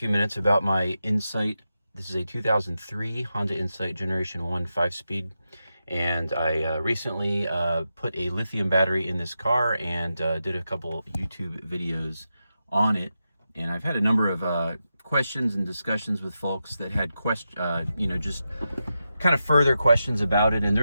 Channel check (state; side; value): inverted; both; correlation -0.89